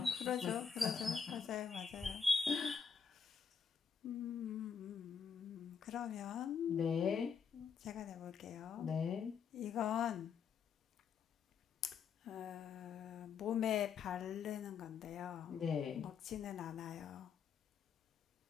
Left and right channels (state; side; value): quieter; right; 6.5 dB